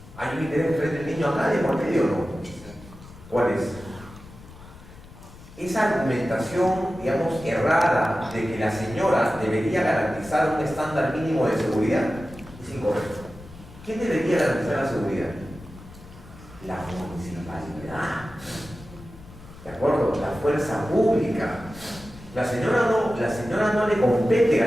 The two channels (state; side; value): noise; left; rumble, 19 dB below the sound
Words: ¿Hay un interés frente al niño acá de por medio o no? ¿Cuál es? Esa argumentación, digamos, errada de que la señora debería garantizar un estándar mínimo de seguridad es incorrecto. ¿Quién debería garantizar la seguridad? La municipalidad. ¿De acuerdo? La fuerza pública. La señora no le compete